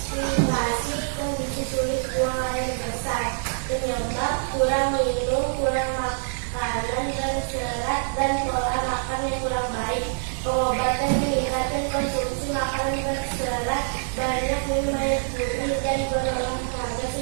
kondisi sulit buang air besar, penyebab kurang minum, kurang makanan berserat, dan pola makan yang kurang baik. Pengobatan meningkatkan konsumsi makanan berserat, banyak minum air putih, dan berolahraga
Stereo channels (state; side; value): silent; left; digital silence